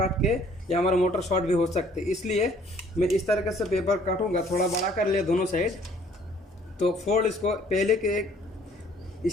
के या हमारा मोटर शॉर्ट भी हो सकते हैं। इसलिए मैं इस तरीके से पेपर काटूंगा, थोड़ा बड़ा कर लिया दोनों साइड। तो फोल्ड इसको पहले के एक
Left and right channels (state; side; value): normal; both; correlation 0.59